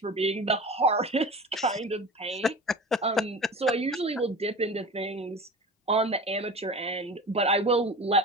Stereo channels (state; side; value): normal; both; correlation 0.34